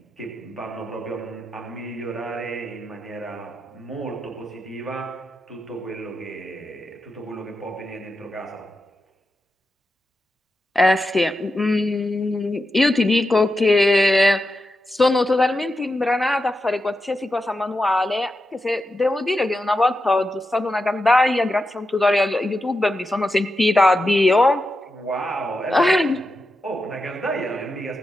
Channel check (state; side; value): normal; both; correlation 0.89